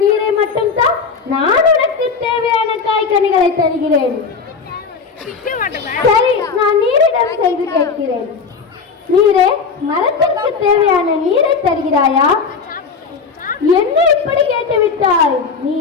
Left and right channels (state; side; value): quieter; right; 5.2 dB